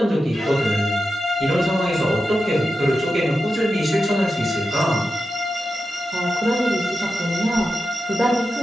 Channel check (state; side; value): normal; both; correlation 0.90